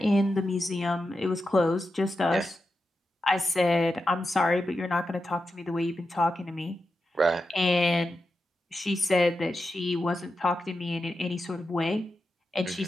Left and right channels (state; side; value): normal; both; correlation 0.89